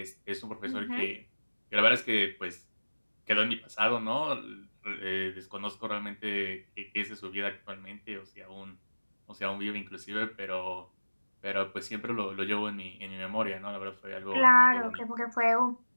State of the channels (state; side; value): inverted; both; correlation -1.00